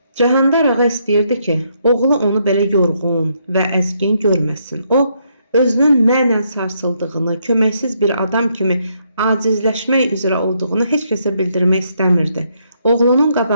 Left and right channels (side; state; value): both; inverted; correlation -0.74